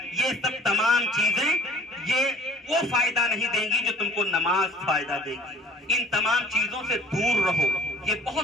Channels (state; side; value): normal; both; correlation 0.51